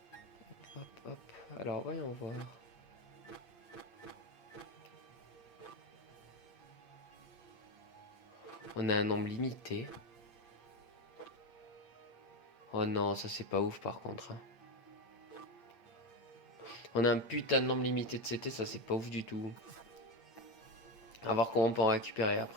Hop, hop. Alors, voyons voir. On a un nombre limité. Oh non, ça c'est pas ouf par contre. Hein. On a un putain de nombre limité de CT, ça c'est pas ouf du tout. À voir comment on peut en récupérer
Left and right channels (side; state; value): right; late; 8.6 ms